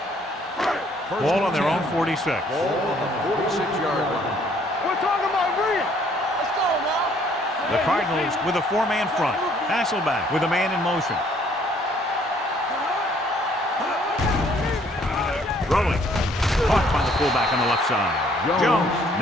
Ball on their own 46. Ball on the 46-yard line. We're talking about Rhea. Let's go now. The Cardinals with a 4-man front. Hasselback with a man in motion. Throwing. Caught by the fullback on the left side. Jones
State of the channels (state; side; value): normal; both; correlation 0.62